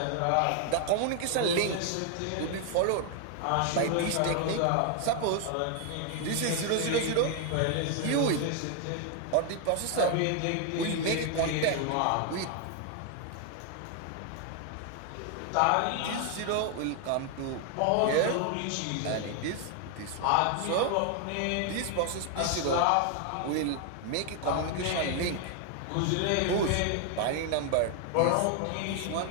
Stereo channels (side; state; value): both; different; correlation 0.00